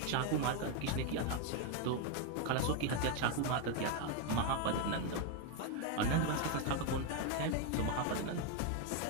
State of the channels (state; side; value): different; both; correlation 0.02